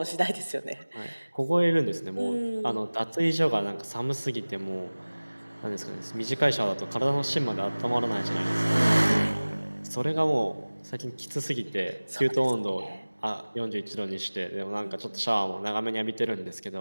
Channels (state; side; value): inverted; both; correlation -1.00